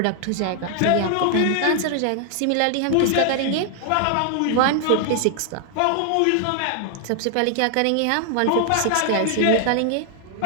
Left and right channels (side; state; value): both; different; correlation 0.00